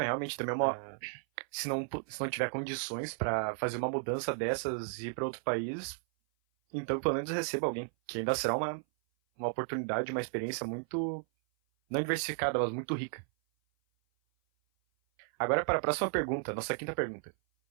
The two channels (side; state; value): left; silent; 55 dB below the other